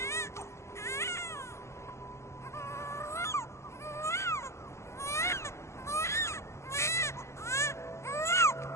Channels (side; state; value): right; late; 0.13 ms